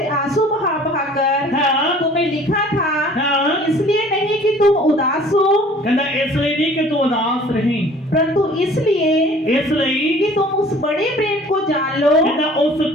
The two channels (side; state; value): both; normal; correlation 0.50